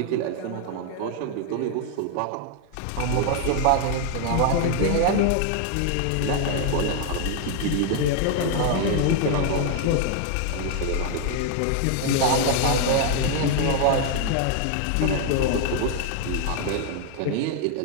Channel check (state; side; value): different; both; correlation 0.00